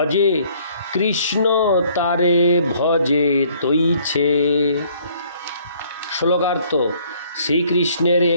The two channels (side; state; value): both; inverted; correlation -0.61